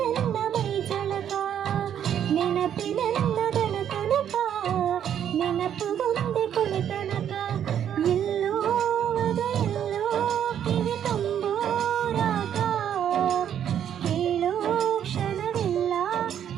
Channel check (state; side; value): quieter; left; 9.5 dB